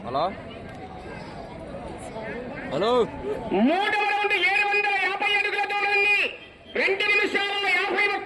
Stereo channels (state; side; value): identical; both; correlation 1.00